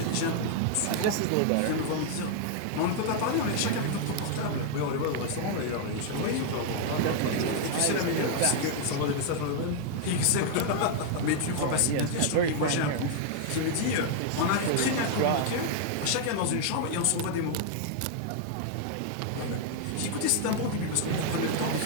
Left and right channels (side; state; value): both; different; correlation 0.00